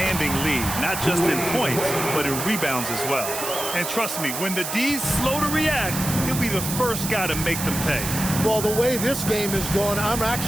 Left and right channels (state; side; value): noise; right; hiss, 5 dB below the sound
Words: lead, not just in points, but in rebounds as well. And trust me, when the D's slow to react, he'll be the first guy to make them pay. Well, the way this game is going, I'm